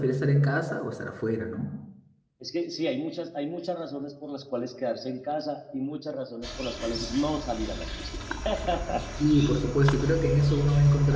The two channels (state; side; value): identical; both; correlation 1.00